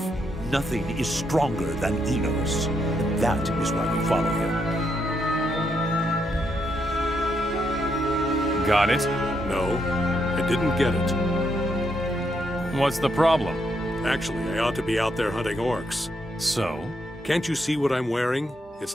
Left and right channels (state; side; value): normal; both; correlation 0.78